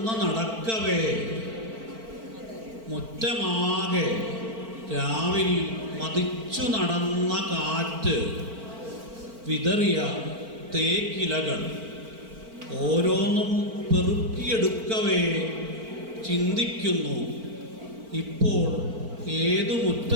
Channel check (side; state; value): left; late; 4.4 ms